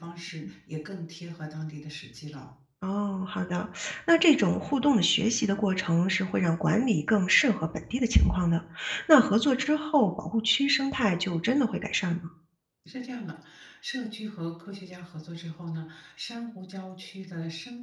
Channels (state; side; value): identical; both; correlation 1.00